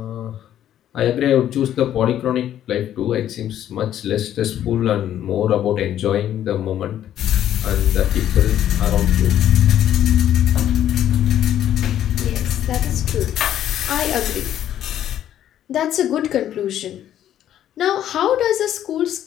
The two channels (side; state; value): right; quieter; 11.2 dB